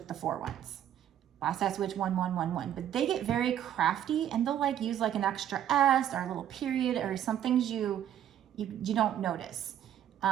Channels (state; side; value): quieter; left; 10.7 dB